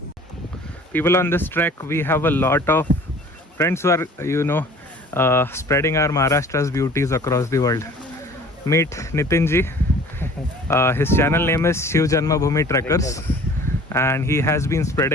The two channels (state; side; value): normal; both; correlation 0.48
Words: People, on this trek, we have a lot of friends who are, spreading our Maharashtra's beauties across the world. Meet Nitinji. His channel name is Shiv Janmabhoomi Trekkers, and he has been